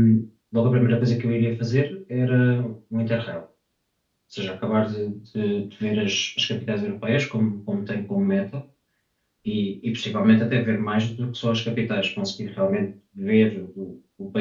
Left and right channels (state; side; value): identical; both; correlation 1.00